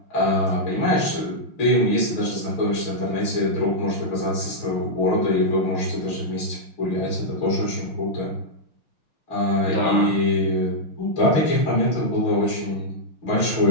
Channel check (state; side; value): late; right; 6.4 ms